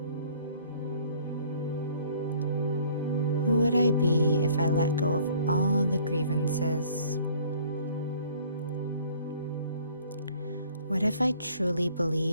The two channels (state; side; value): inverted; both; correlation -0.56